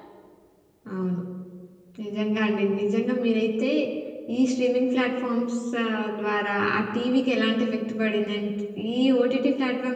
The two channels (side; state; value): both; identical; correlation 1.00